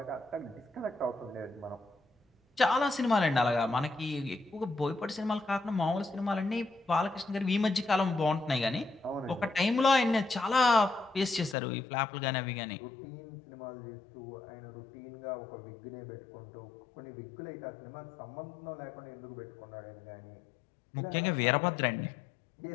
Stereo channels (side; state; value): right; drops out; at 11.6 s